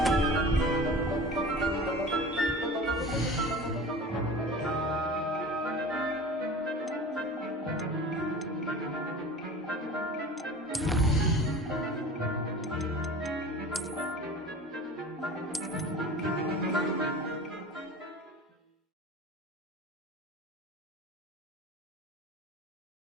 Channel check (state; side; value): normal; both; correlation 0.38